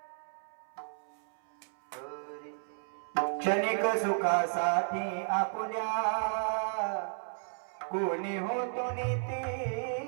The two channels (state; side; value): silent; left; 55 dB below the other